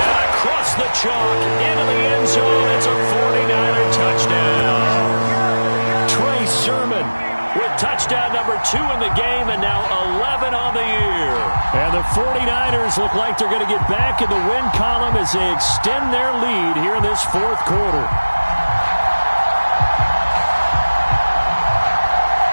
across the chalk into the end zone. It's a 49er touchdown. Trey Sermon with touchdown number 2 in the game and now 11 on the year. And the 49ers look like they're going to get back in the win column as they extend their lead here in this 4th quarter.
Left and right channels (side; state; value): both; inverted; correlation -1.00